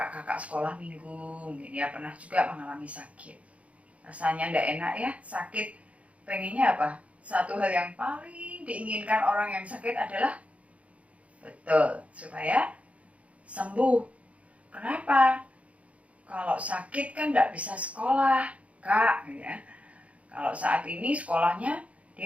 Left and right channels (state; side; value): late; left; 0.065 ms